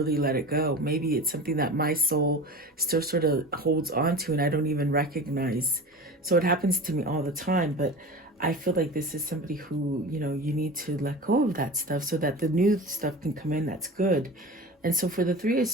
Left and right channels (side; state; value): both; normal; correlation 0.33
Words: let it go. Maybe it's something that my soul still sort of holds on to and I don't even recognize. So it happens to me all the time. But I feel like this is somebody who, you know, you need to let go of that stuff so that the new stuff can come in that's good. And so for the Three of